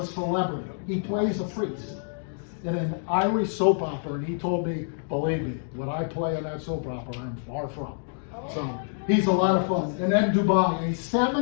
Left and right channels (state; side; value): silent; right; digital silence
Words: celebrity. He plays a priest in an Irish soap opera, and he told me, believe me, what I play in that soap opera, I'm far from. So he's a lot of fun. And then Dubai, a